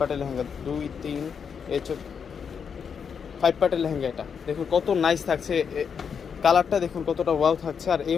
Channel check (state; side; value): quieter; right; 6.7 dB